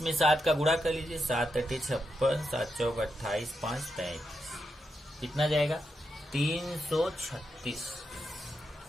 में 7 का गुणा कर लीजिए। 7 × 56, 7 × 4 = 28, 5 × 33, कितना जाएगा? 336।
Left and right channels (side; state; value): both; normal; correlation 0.85